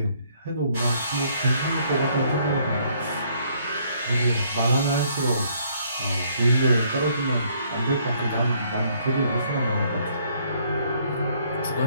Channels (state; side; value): inverted; both; correlation -0.66